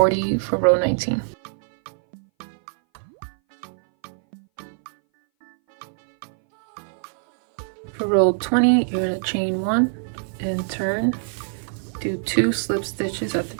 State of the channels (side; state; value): left; silent; 60 dB below the other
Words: for row 19. For row 20, you're going to chain 1 and turn, do 2 slip stitches at the